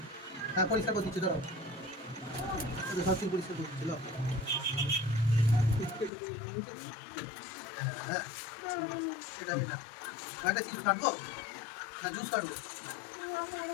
হ্যাঁ পরিষ্কার করে দিচ্ছি, ধরো সব চুল পরিষ্কার করে দিচ্ছিল। হ্যাঁ এটা একটা চিজ কাটবো না জুস কাটবো?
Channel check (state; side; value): drops out; right; at 6.1 s